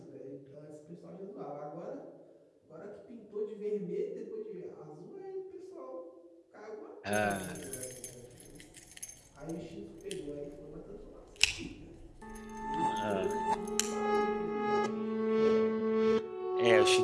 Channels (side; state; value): both; identical; correlation 1.00